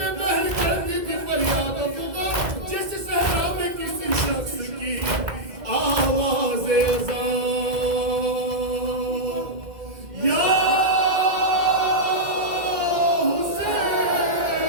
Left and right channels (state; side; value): late; left; 2.0 ms